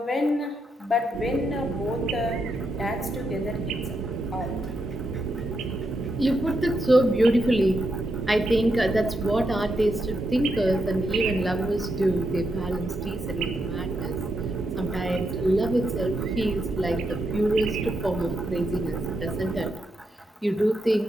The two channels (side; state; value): both; normal; correlation 0.82